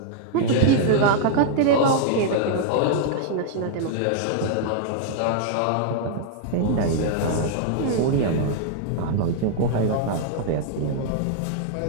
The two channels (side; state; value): both; different; correlation -0.01